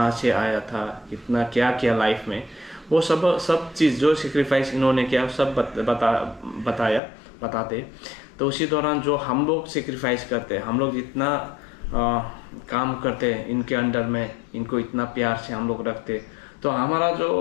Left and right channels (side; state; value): right; drops out; at 7.0 s